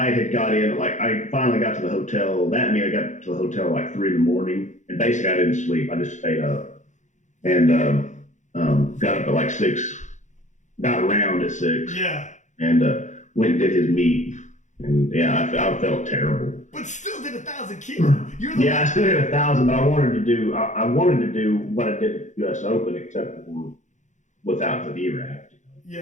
had got in, like I finally got to the hotel. That mean I got to the hotel like 3 a.m, and basically I didn't sleep. I just stayed up and got up at like 6, got around at 6. Yeah. And went and did his meet, and yeah, I felt terrible. But still did 1,000 kilo. I still did 1,000, but I wanted to do what I did at the U.S. Open, except for without the VRAP.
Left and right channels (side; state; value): right; late; 0.35 ms